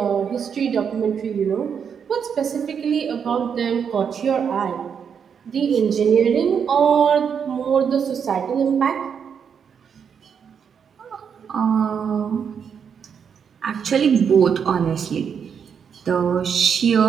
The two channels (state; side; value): quieter; left; 7.2 dB